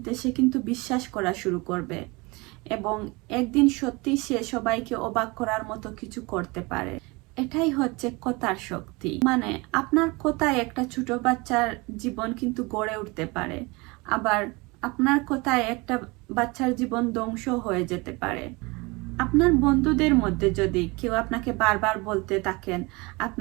সে কিন্তু বিশ্বাস করা শুরু করবে এবং একদিন সত্যি সে সবাইকে অবাক করার মতো কিছু করতে পারে। এটাই হচ্ছে কথার শক্তি। মানে আপনার কথায় একটা ছোট বাচ্চার জীবন কিন্তু গড়ে উঠতে পারে, আবার আপনার কথায় একটা বাচ্চার জীবন ধ্বংস হয়ে যেতে পারে। আপনার বন্ধুদের মধ্যে যদি কেউ আপনাকে বারবার বলতে থাকেন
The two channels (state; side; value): quieter; left; 25.5 dB